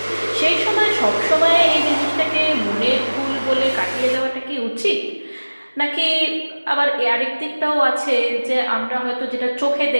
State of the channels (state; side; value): inverted; both; correlation -1.00